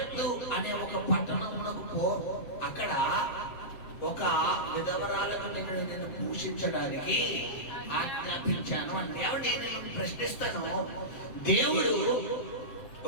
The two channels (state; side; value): late; right; 7.6 ms